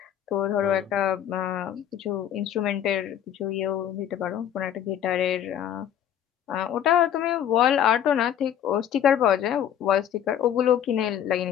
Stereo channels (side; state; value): right; quieter; 10.0 dB